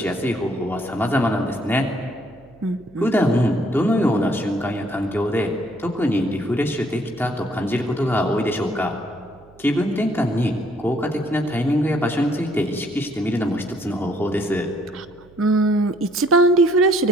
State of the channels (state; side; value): noise; right; hum, 26 dB below the sound